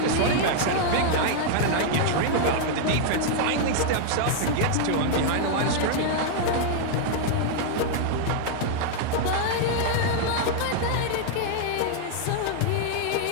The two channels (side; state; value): both; different; correlation 0.00